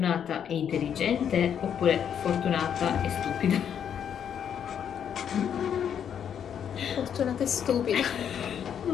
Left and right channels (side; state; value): right; quieter; 8.5 dB